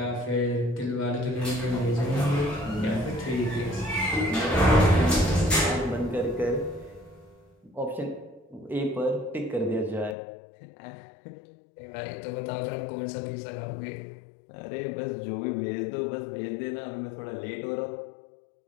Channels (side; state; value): right; drops out; at 10.2 s